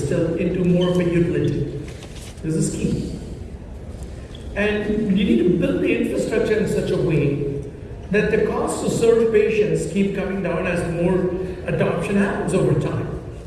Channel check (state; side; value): identical; both; correlation 1.00